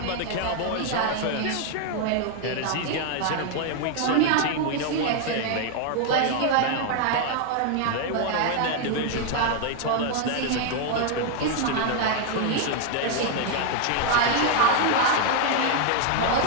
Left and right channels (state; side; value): different; both; correlation 0.01